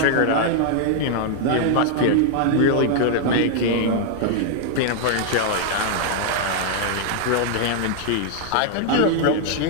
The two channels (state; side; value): different; both; correlation 0.00